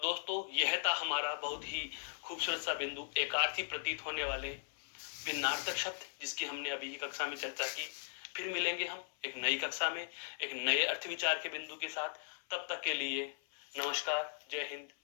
दोस्तों यह था हमारा बहुत ही खूबसूरत सा बिंदु, एकार्थी प्रतीत होने वाले भिन्नार्थक शब्द, जिसकी हमने अभी की कक्षा में चर्चा की। फिर मिलेंगे हम एक नई कक्षा में एक नए अर्थ विचार के बिंदु के साथ। तब तक के लिए नमस्कार, जय हिंद,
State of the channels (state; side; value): silent; right; 52 dB below the other